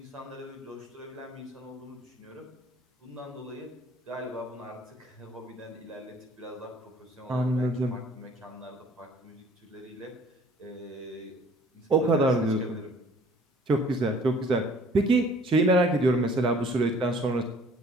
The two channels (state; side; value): normal; both; correlation 0.54